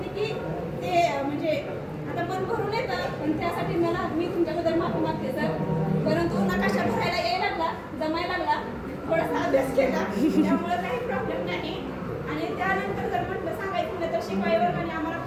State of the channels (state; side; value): identical; both; correlation 1.00